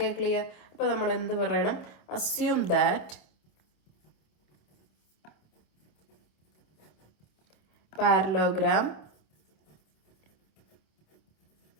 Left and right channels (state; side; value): late; right; 27 ms